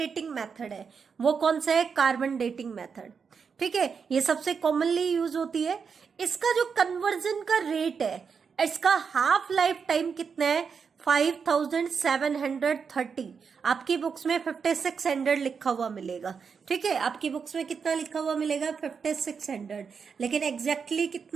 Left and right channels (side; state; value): left; quieter; 6.0 dB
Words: मेथड है वो कौन सा है, कार्बन डेटिंग मेथड। ठीक है, ये सबसे कॉमनली यूज होती है। इसका जो कन्वर्जन का रेट है, इसका हाफ लाइफ टाइम कितना है, 5730। आपकी बुक्स में 5600 लिखा हुआ मिलेगा। ठीक है, आपकी बुक्स में कितना लिखा हुआ मिलेगा, 5600, लेकिन एग्जैक्टली